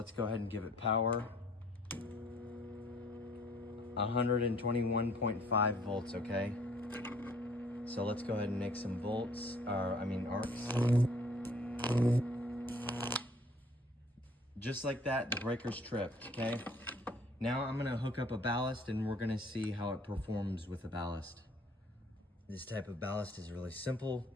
go ahead and give it power. 121.5 volts, okay? So let's go ahead and make some arcs. Just like that, the breaker's tripped, okay? Now I'm gonna hook up a ballast and we're gonna see how it performs with a ballast. This type of ballast is really simple.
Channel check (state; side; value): normal; both; correlation 0.57